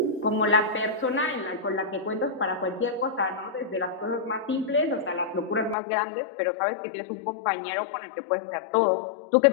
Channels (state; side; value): drops out; right; at 5.8 s